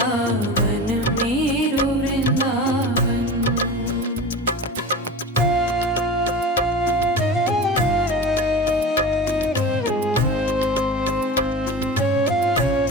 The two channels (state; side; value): normal; both; correlation 0.32